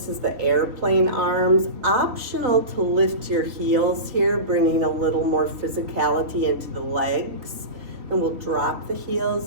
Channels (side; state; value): left; late; 3.1 ms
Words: is the airplane arms. Optional to lift your heels here, bringing a little more physicality into the legs. And we'll drop the